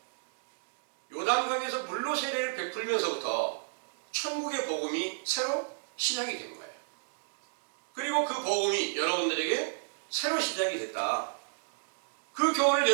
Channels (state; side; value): silent; left; digital silence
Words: 요단강에서 물로 세례를 베풀면서부터 천국의 복음이 새로 시작이 된 거예요. 그리고 그 복음이 여러분들에게 새로 시작이 됐다. 그 교훈을